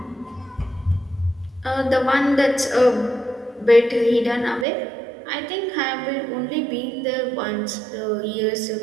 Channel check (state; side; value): drops out; left; at 4.7 s